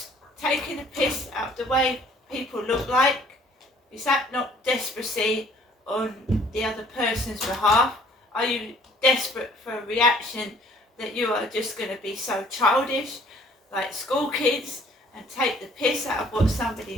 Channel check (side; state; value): both; normal; correlation 0.57